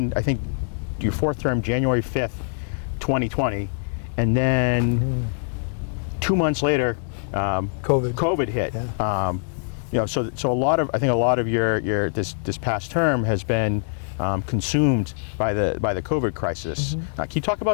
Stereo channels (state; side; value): silent; right; digital silence